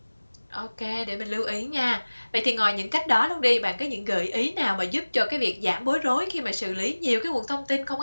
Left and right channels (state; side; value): inverted; both; correlation -1.00